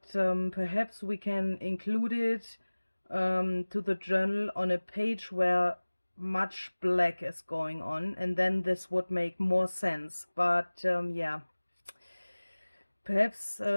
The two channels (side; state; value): both; inverted; correlation -1.00